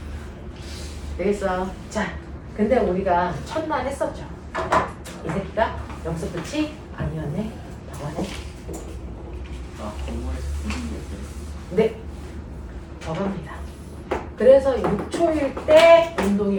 되겠어? 자, 근데 우리가 첫날 했었죠. 이 새끼가 여기서 끝이 아니었네. 더하네. 아, 건물에서 듣는 게 네. 더합니다. 그래서 6초일 때 운동이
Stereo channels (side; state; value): both; identical; correlation 1.00